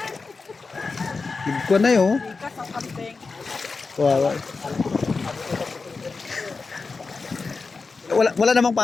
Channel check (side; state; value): right; quieter; 4.3 dB